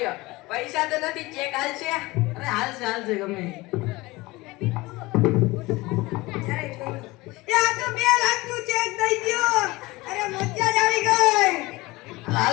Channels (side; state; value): right; quieter; 21.4 dB